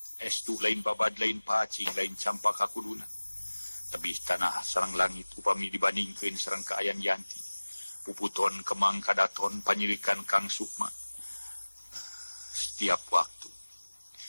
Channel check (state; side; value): inverted; both; correlation -1.00